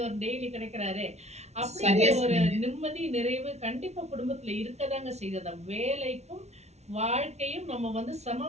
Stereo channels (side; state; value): left; late; 0.32 ms